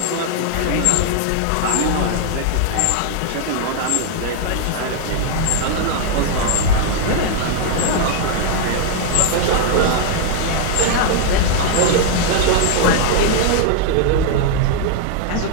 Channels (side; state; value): both; different; correlation 0.00